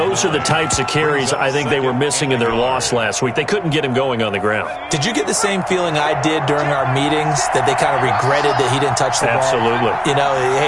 are the types of carries I think they were missing in their loss last week. They couldn't get him going on the ground. Did you get the same feeling I did during our meetings, that they kind of regretted that he didn't touch the ball? Absolutely. You know,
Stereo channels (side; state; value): both; identical; correlation 1.00